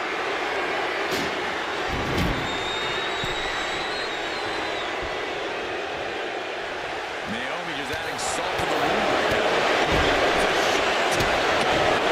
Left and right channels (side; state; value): both; identical; correlation 1.00